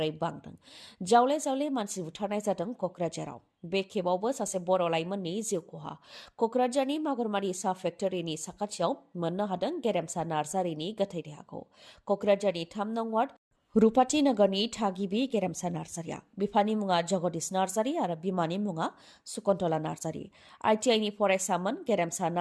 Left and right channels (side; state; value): both; identical; correlation 1.00